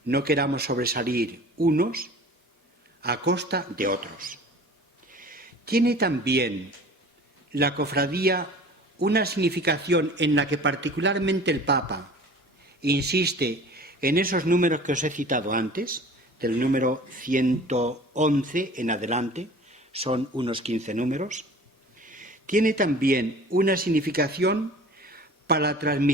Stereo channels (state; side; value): normal; both; correlation 0.44